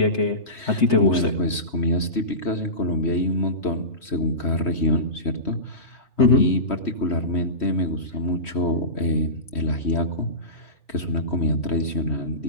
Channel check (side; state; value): right; late; 3.1 ms